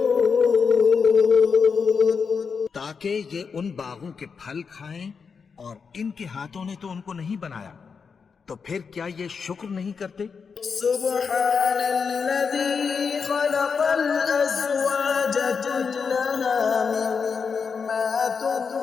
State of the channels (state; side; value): quieter; right; 5.7 dB